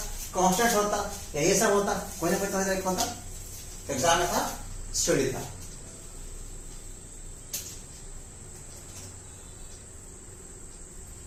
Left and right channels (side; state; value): both; identical; correlation 1.00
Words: कांस्टेंट होता, या ये सब होता, कोई ना कोई तरह एक होता। एग्जाम में था स्टडी था।